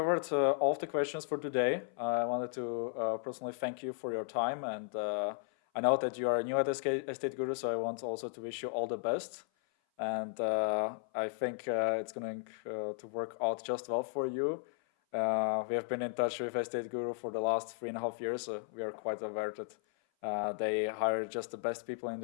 all of the questions for today. I wanted to personally thank you for your time, and I know that you are new at EstateGuru, so I want also to wish you all the best. And I think it's going to work out just well for you. We have been in touch with EstateGuru for the last 3.5 years. We are quite aware that they hire just the best people in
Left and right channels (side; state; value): right; silent; 54 dB below the other